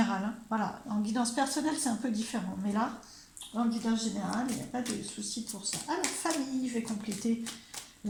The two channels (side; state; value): both; identical; correlation 1.00